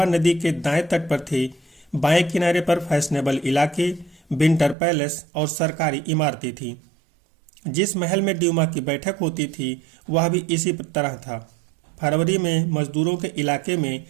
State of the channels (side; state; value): left; drops out; at 4.8 s